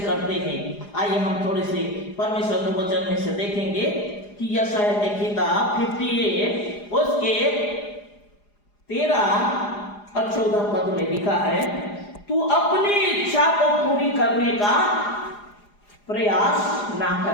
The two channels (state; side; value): late; right; 4.9 ms